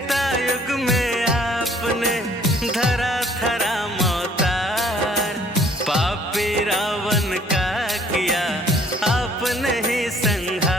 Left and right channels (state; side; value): normal; both; correlation 0.58